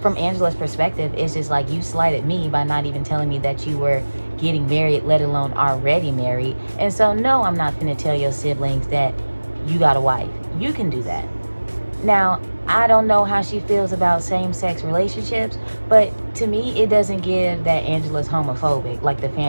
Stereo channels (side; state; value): both; inverted; correlation -1.00